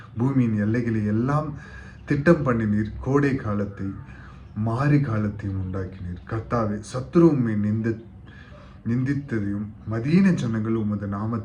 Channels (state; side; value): identical; both; correlation 1.00